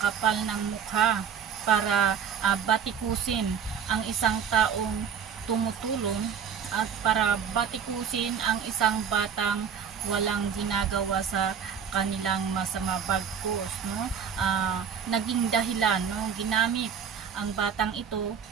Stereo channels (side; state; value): left; quieter; 7.4 dB